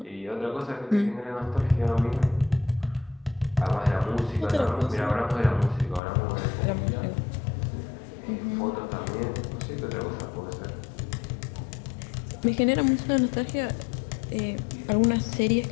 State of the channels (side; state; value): right; drops out; at 6.0 s